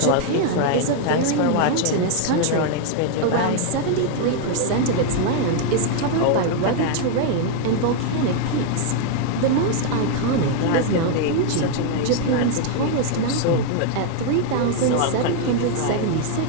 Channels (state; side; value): different; both; correlation 0.00